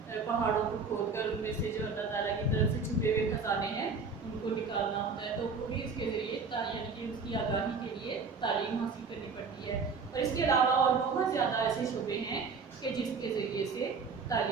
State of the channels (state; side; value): quieter; left; 4.9 dB